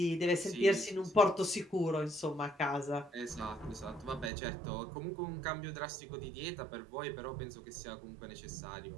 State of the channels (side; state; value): left; drops out; at 4.3 s